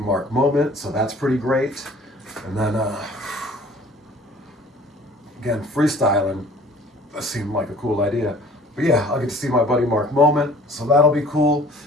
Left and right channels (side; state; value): both; normal; correlation 0.51